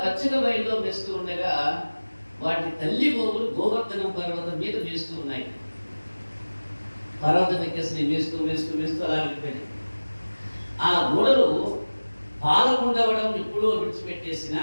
పచ్చిక బయలులో వేస్తూ ఉండగా వాటి తల్లి గోవులు గోవర్ధనం పర్వతం మీద వేస్తూ ఉన్నాయి. పర్వతం ఎక్కేసి వేస్తూ వేస్తూ వేస్తూ అలా వెళ్ళిపోయింది. ఆ గోడలు పాలకుండవడం ఎప్పుడో విడిచిపెట్టేసిన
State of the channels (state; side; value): inverted; both; correlation -1.00